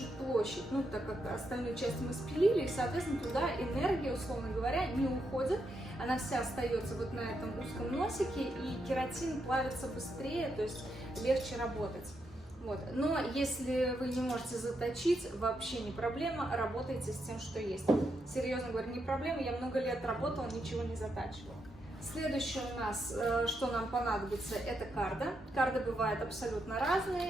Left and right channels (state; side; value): normal; both; correlation 0.82